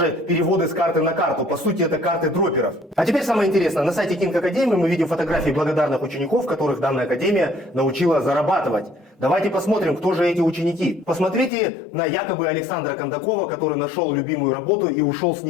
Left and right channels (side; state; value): right; drops out; at 11.5 s